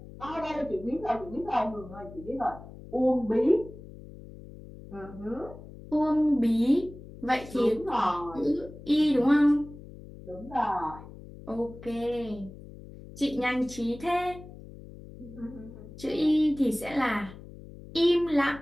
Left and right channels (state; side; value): noise; left; hum, 16 dB below the sound